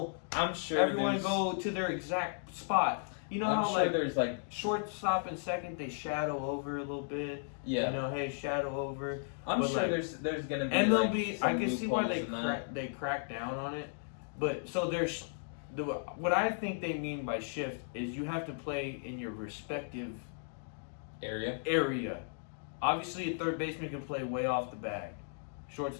I'm sure everyone go to their exact spot. You know I'm how sure like there's like shortstop and second, they shadow over a little bit. yeah. You know, hey, shadow over. I'm But, sure like, there's gonna be MLB, like, I some can see why loopholes they crack down on it. But so there's what I think they mean by shift is you have to play in your respective area. Obviously, a third baseman can play way off the bag.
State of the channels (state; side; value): silent; right; digital silence